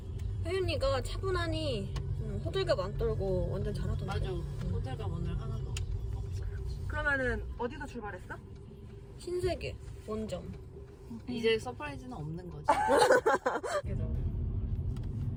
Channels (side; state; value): both; identical; correlation 1.00